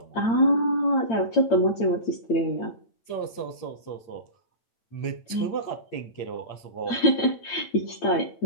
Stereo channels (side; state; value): right; late; 8.8 ms